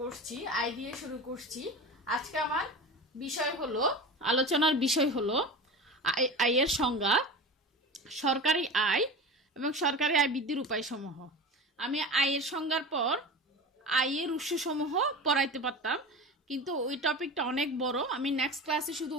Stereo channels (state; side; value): normal; both; correlation 0.30